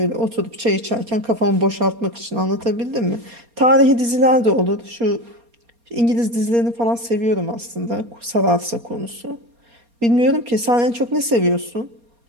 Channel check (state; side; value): late; left; 4.3 ms